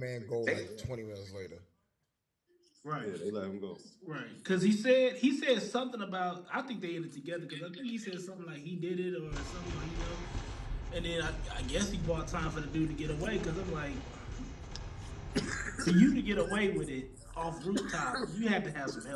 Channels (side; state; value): both; identical; correlation 1.00